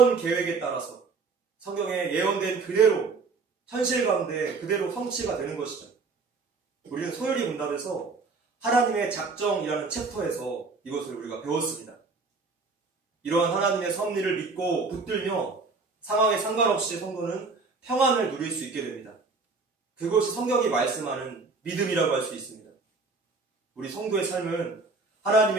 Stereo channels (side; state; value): left; quieter; 4.2 dB